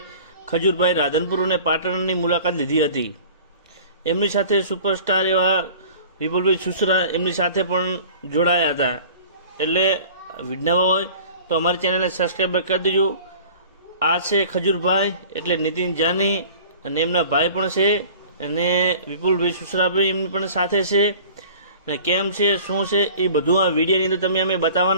ખજૂરભાઈ રાધનપુર અને પાટણની મુલાકાત લીધી હતી. એમની સાથે સુપરસ્ટાર એવા વિપુલભાઈ સુસરા એમની સાથે પણ જોડાયા હતા. એટલે વિડીયોમાં હોય તો અમારી ચેનલને સબસ્ક્રાઈબ કરી દેજો. આ છે ખજૂરભાઈ એટલે નીતિન જાની અને એમના ભાઈ પણ છે અને વિપુલભાઈ સુસરાભાઈ એમની પણ સાથે છે. અને કેમ છે શું છે એ બધું આ વિડીયોની અંદર તમે અમે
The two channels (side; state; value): both; inverted; correlation -0.45